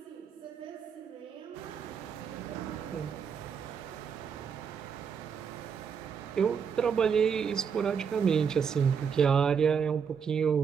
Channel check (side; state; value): left; quieter; 6.7 dB